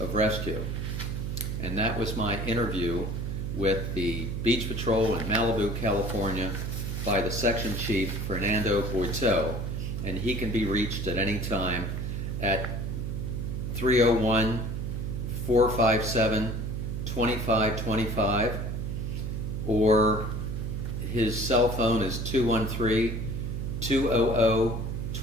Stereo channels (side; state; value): right; noise; hum, 3 dB below the sound